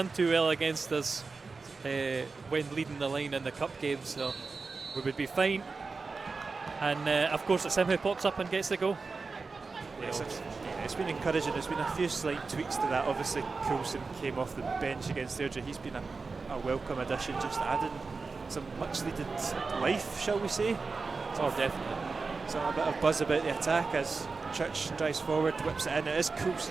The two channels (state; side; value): quieter; left; 4.3 dB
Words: too well against us when leading the line in the cup game, so we would be fine. And of course it's him who pops up and gets the goal. Yes, it's been encouraging. There's been a few slight tweaks to that. Obviously Coulson came off the bench against Airdrie. He's been a welcome addition, just adding some much needed life, shall we say. Oh, definitely. So a bit of buzz about the attack as Church drives forward, whips it in. It is